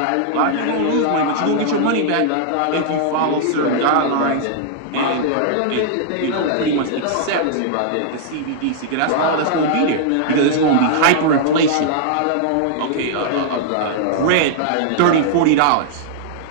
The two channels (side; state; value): both; different; correlation -0.01